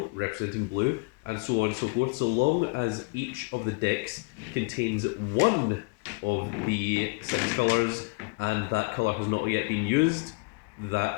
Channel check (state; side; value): quieter; right; 29.5 dB